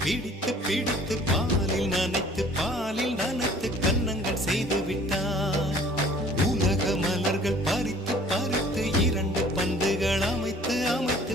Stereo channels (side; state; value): both; normal; correlation 0.52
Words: பிடித்து பிடித்து பாலில் நனைத்து கன்னங்கள் செய்து விட்டார். உலக மலர்கள் பறித்து பறித்து 2 பந்துகள் அமைத்து அமைத்து